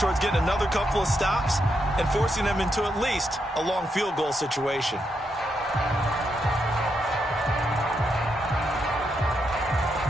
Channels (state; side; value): normal; both; correlation 0.81